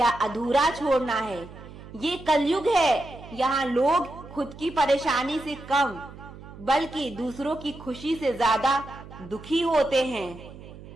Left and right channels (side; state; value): right; noise; hum, 16 dB below the sound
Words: अधूरा छोड़ना है। ये कलयुग है, यहाँ लोग खुद की परेशानी से कम बल्कि दूसरों की खुशी से ज्यादा दुखी होते हैं।